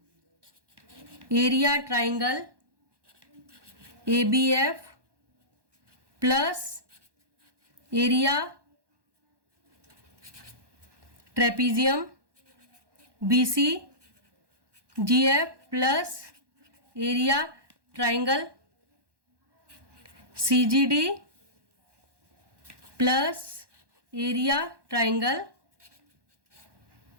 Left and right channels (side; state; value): left; late; 1.2 ms